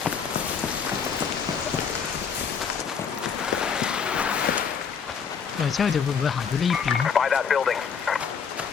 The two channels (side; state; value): right; quieter; 6.5 dB